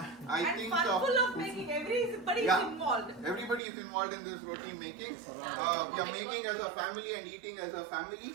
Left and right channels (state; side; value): drops out; left; at 3.6 s